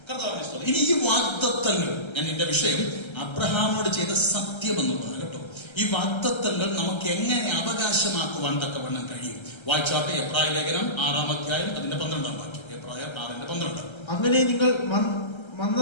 ഇനി ഈ വാഗ്ദത്തങ്ങൾ, ഞാൻ എന്റെ വിഷയം അബ്രഹാമിനോട് ചെയ്ത സത്യം എന്നുള്ളതാണ് കേട്ടോ. ഈ വാഗ്ദത്തങ്ങൾ നമുക്ക് എങ്ങനെ അവകാശമാക്കുവാൻ തക്കവണ്ണം കഴിയും? വായിച്ചാട്ടെ എബ്രായ ലേഖനം 6-ാം അധ്യായം അതിന്റെ 12-ാം വാക്യം. എബ്രായ 6:12. അങ്ങനെ നിങ്ങൾ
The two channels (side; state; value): right; late; 1.3 ms